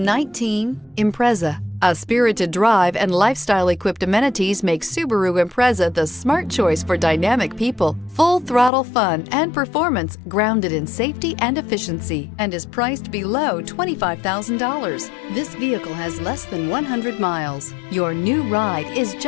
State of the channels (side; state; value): right; drops out; at 8.7 s